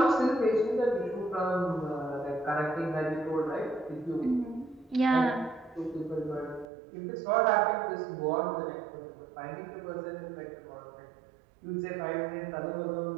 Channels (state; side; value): drops out; left; at 6.7 s